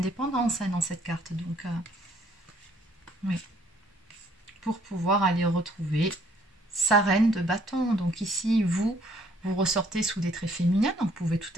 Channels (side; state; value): both; normal; correlation 0.64